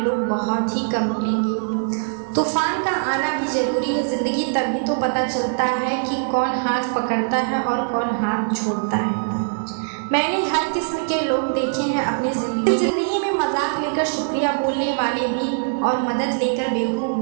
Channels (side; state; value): left; silent; digital silence